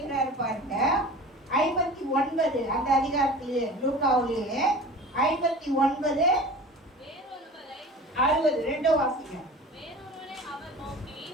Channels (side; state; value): both; normal; correlation 0.38